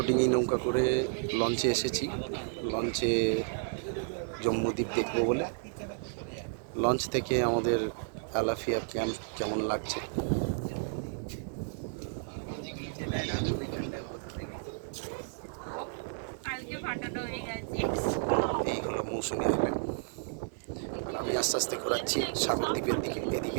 ডিঙি নৌকা করে লঞ্চে এসেছি। লঞ্চে জম্মুদ্বীপ দেখবো বলে। লঞ্চ থেকে আমাদের আলাফিয়া ক্যাম্প কেমন লাগছে। এই হলো মৌসুমি আইল্যান্ড। আর আমি আস্তে আস্তে ঘোরাচ্ছি সাগরদ্বীপের দিকে। এদিকে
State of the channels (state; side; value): silent; left; 56 dB below the other